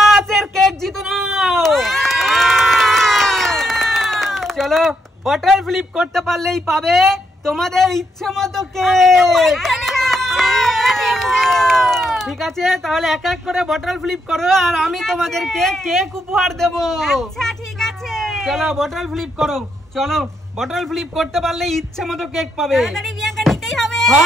এর cake জিতে নাও। চলো বটল ফ্লিপ করতে পারলেই পাবে তোমাদের ইচ্ছে মতো কেক। ঠিক আছে, তাহলে এক এক করে বটল ফ্লিপ করো আর আমি তোমাদেরকে কেক উপহার দেব। আচ্ছা ঠিক আছে, চলো বটল ফ্লিপ করো। চলো বটল ফ্লিপ করতে পারলে ইচ্ছে মতো কেক পাবে। তাড়াতাড়ি বিয়াঙ্কা নিতেই হবে।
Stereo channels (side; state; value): both; normal; correlation 0.78